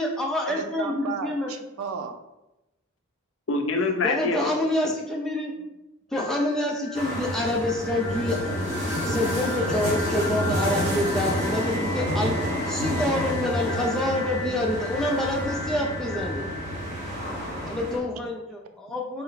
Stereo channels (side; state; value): both; normal; correlation 0.46